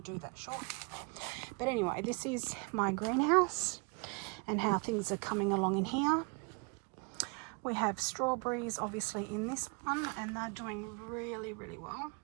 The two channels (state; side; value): quieter; left; 32.9 dB